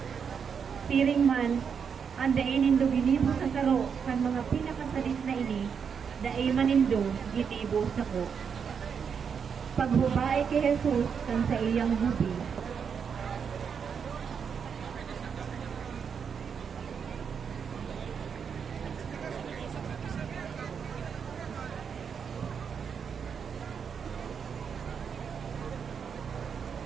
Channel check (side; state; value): left; quieter; 6.7 dB